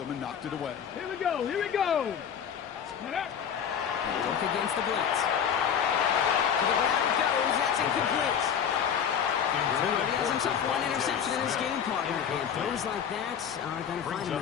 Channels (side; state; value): right; quieter; 8.1 dB